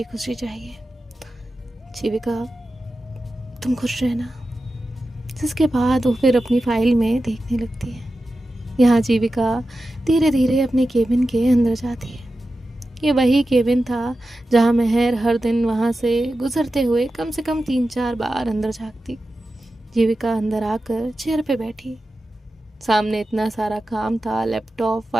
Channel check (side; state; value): both; normal; correlation 0.92